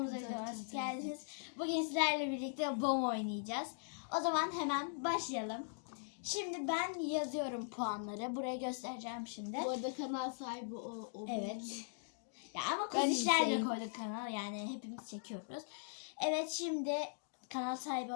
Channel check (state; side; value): silent; right; digital silence